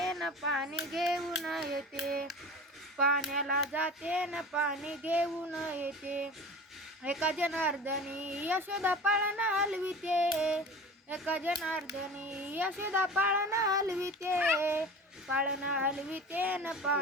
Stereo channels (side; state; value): both; normal; correlation 0.36